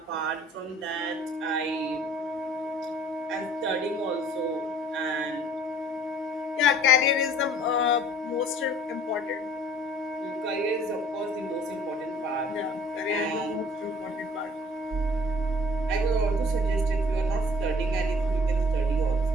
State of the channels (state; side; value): normal; both; correlation 0.53